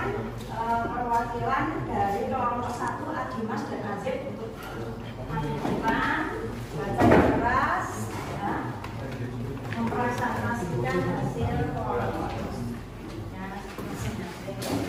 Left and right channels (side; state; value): both; identical; correlation 1.00